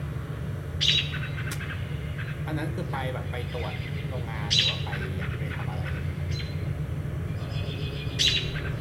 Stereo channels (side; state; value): both; identical; correlation 1.00